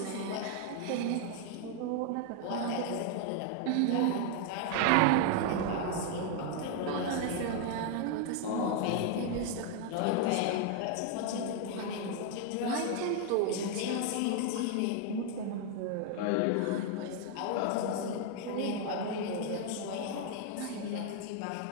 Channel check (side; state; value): both; different; correlation 0.00